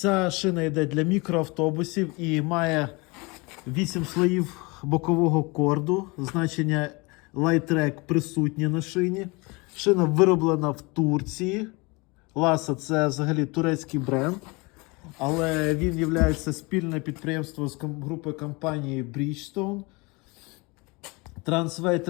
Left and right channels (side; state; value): right; quieter; 26.7 dB